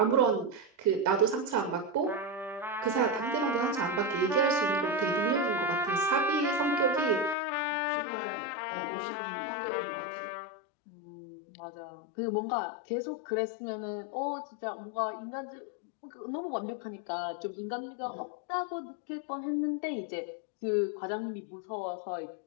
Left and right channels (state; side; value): drops out; right; at 7.4 s